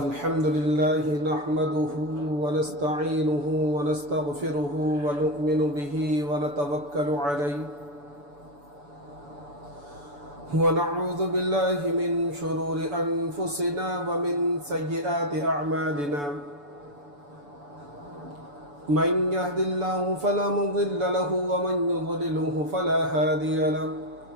لله نحمده ونستعينه ونستغفره ونؤمن به ونتوكل عليه ونعوذ بالله من شرور أنفسنا ومن سيئات أعمالنا من يهد الله فلا مضل له ومن يضلله فلا هادي له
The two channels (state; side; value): late; left; 6.9 ms